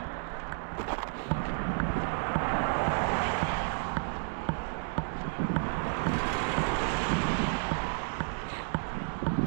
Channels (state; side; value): silent; left; 57 dB below the other